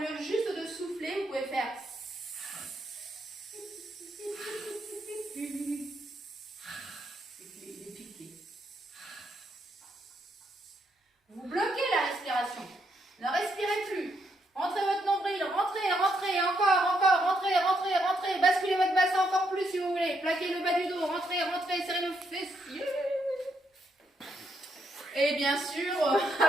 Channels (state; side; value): normal; both; correlation 0.77